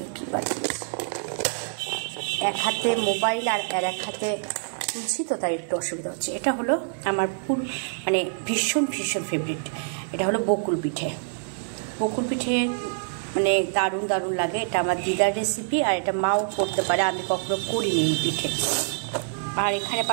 কি পাঠিয়েছে। এক হাতে মোবাইল আর এক হাতে তুলছি, তো তাই একটু অসুবিধা হচ্ছে। এটা হলো আমার মানে ভীষণ ভীষণ ফেভারিট, এটা হলো বকুল পিঠে। বকুল পিঠে মানে দারুণ দারুণ লাগে। এটা আমার দিদার রেসিপি, আর এটা মাও করতে পারে, আমি কখনো করিনি এই পিঠে। আর এখানে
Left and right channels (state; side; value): silent; left; digital silence